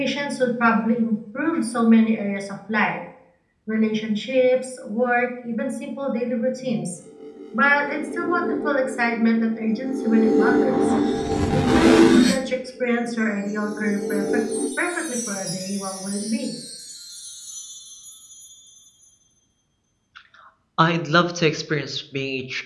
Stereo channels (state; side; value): identical; both; correlation 1.00